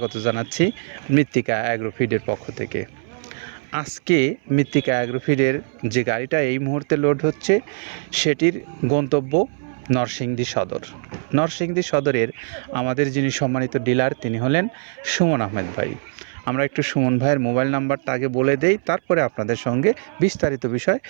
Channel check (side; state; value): left; silent; 62 dB below the other